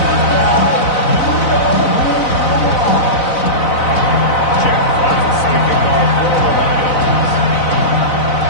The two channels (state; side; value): late; right; 4.0 ms